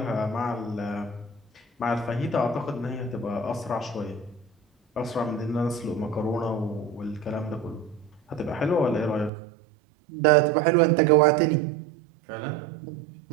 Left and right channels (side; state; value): left; drops out; at 9.3 s